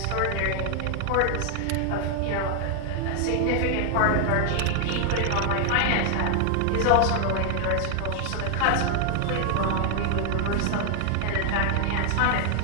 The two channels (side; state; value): both; different; correlation 0.00